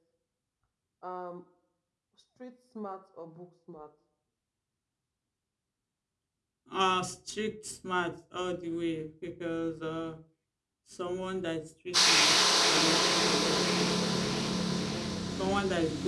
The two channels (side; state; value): both; identical; correlation 1.00